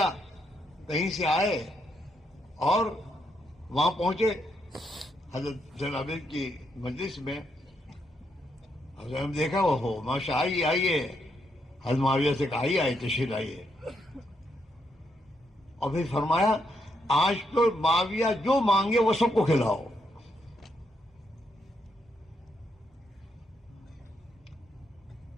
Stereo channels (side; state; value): both; normal; correlation 0.78